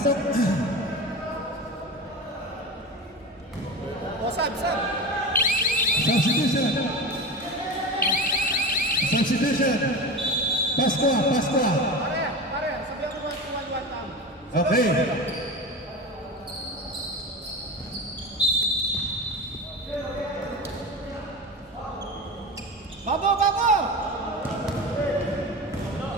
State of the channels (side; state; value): both; normal; correlation 0.27